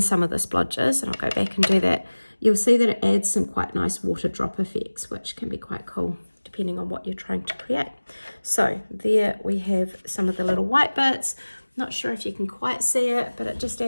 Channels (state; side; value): inverted; both; correlation -1.00